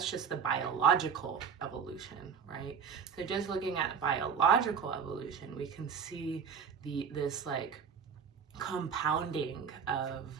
just the biological evolution, right? So just looking at biological evolution, we can see this like compounding of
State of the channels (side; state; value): left; quieter; 6.7 dB